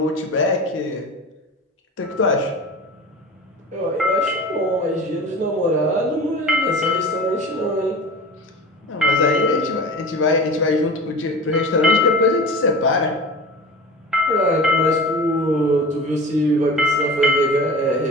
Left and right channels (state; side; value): normal; both; correlation 0.35